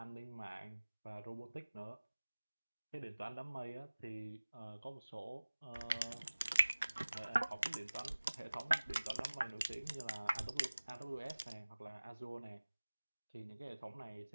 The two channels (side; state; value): both; inverted; correlation -1.00